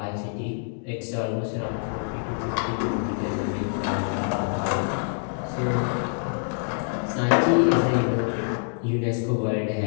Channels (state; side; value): silent; right; digital silence